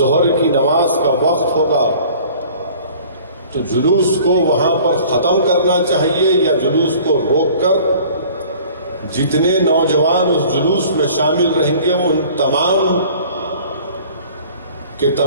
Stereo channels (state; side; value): inverted; both; correlation -0.49